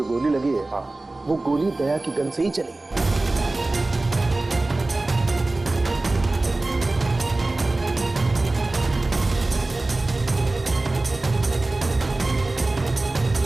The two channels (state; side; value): quieter; left; 3.0 dB